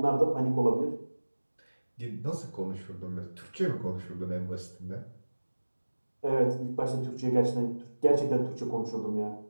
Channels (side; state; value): both; inverted; correlation -1.00